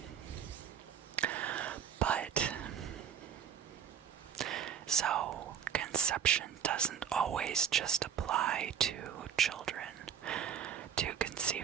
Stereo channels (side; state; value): left; quieter; 8.2 dB